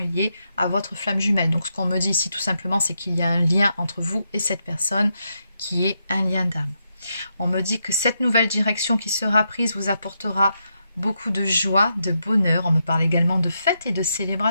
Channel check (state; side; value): inverted; both; correlation -0.82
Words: liée à votre flamme jumelle. Donc ce qu'on me dit ici tout simplement, c'est qu'il y a un lien entre vous et cette personne qui est un lien d'âme. On me dit que cette nouvelle direction qui sera prise vous apportera beaucoup de joie, de bonheur. On me parle également de fêtes et de